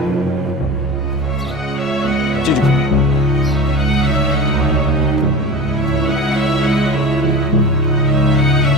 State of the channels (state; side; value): normal; both; correlation 0.32